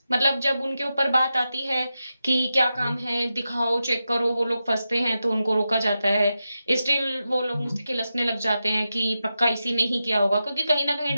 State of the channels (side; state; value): both; inverted; correlation -0.90